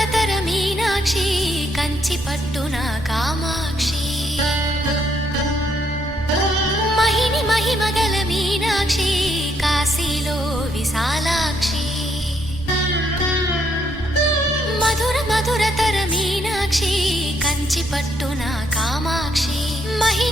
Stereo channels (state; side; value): normal; both; correlation 0.73